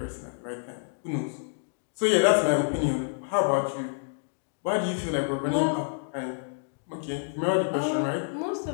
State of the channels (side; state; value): right; silent; digital silence